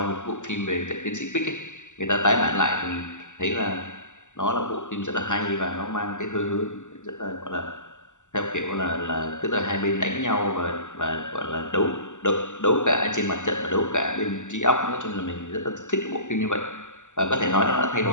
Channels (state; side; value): late; right; 0.85 ms